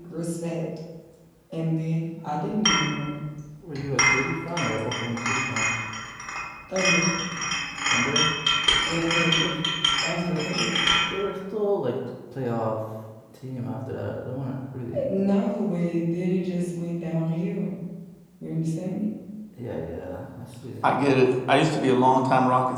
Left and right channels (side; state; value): both; identical; correlation 1.00